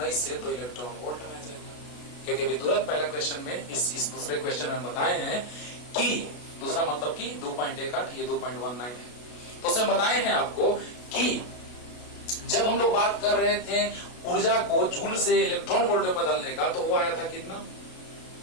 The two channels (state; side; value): late; right; 33 ms